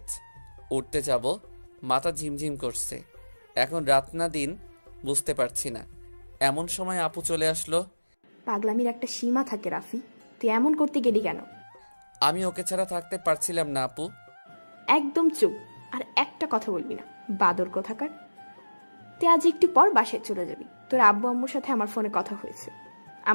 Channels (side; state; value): both; inverted; correlation -1.00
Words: উঠতে যাব, মাথা ঝিমঝিম করছে। এখন রাত না দিন বুঝতে পারছি না। এমন সময় আপু চলে আসলো। পাগলামির একটা সীমা থাকে রাফি, তুই এমন করতে গেলি কেন? আমি ওকে ছাড়া থাকতে পারছিলাম না আপু। একদম চুপ, আর একটা কথা বলবি না, বাদর কোথাকার। তুই আজ একটু পর বাসায় চলে যাবি। তোর আব্বু আম্মুর সাথে আমার ফোনে কথা হয়েছে,